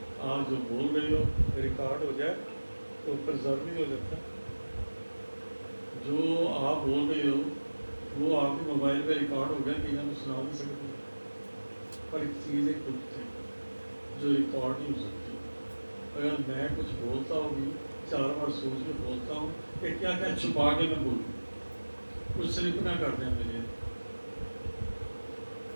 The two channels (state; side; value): inverted; both; correlation -1.00